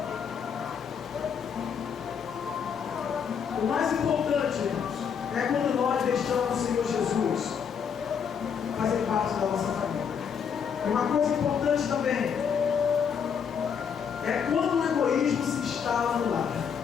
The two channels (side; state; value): right; quieter; 7.1 dB